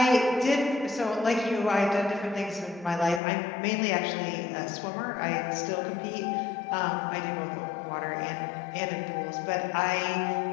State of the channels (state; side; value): drops out; right; at 3.2 s